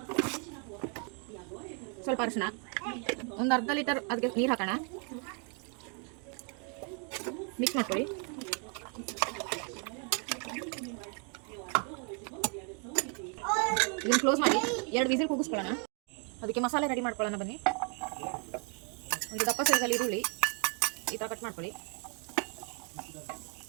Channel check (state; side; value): quieter; left; 39.1 dB